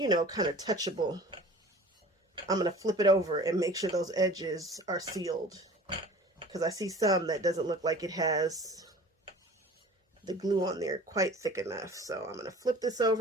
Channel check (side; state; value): both; normal; correlation 0.43